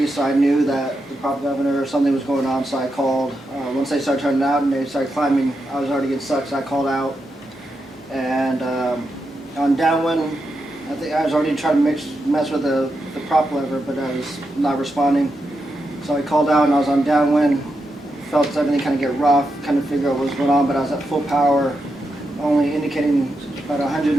so I knew that the prop governor or something was going on, so I called. Once they started turning out and they started climbing, I was already getting stuck, so I called out. And on downwind, I think I was already trying to mess with the prop lever, but I was not responding. So I called out and I was on downwind, felt everything kind of get rough, kind of figure out what was going on, but I was at full power, only indicating about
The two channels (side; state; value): both; normal; correlation 0.86